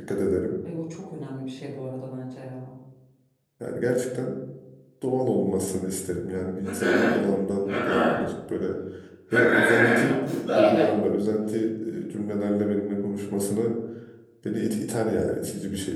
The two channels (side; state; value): both; identical; correlation 1.00